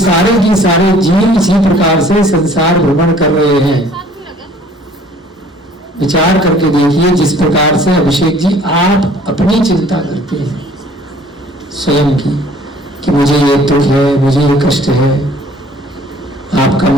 की सारे जीव इसी प्रकार से संसार भ्रमण कर रहे हैं। विचार करके देखिए, जिस प्रकार से अभिषेक जी आप अपनी चिंता करते हैं स्वयं की, कि मुझे ये दुख है, मुझे ये कष्ट है, आपका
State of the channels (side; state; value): both; normal; correlation 0.54